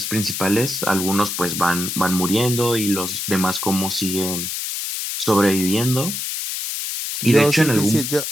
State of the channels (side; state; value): left; noise; hiss, 4 dB below the sound